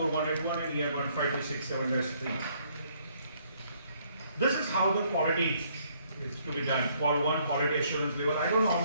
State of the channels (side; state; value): both; inverted; correlation -0.67